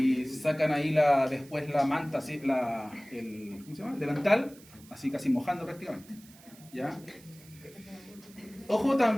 sacan ahí después la manta, así, ¿cómo se llama? El delantal, así casi mojando prácticamente. ¿Ya? Ojo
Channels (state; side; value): noise; right; hiss, 23 dB below the sound